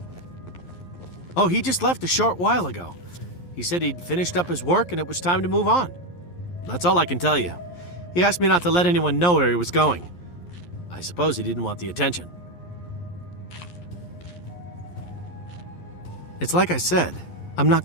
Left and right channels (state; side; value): late; right; 11 ms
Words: Oh, he just left a short while ago. He said he'd finished up his work and it was time to move on. That's all I can tell you. He asked me not to let anyone know where he was going. I suppose he didn't want the attention. It's like I said, I'm not